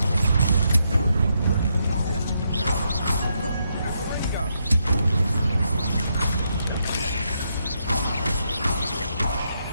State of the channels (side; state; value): both; inverted; correlation -0.79